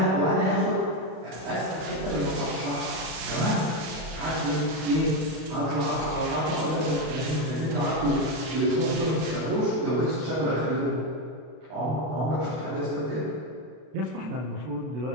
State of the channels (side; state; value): left; late; 32 ms